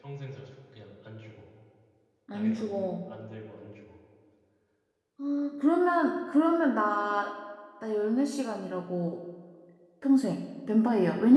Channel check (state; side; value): identical; both; correlation 1.00